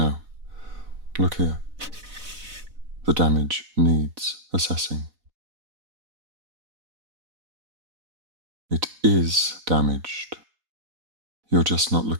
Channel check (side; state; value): left; late; 4.0 ms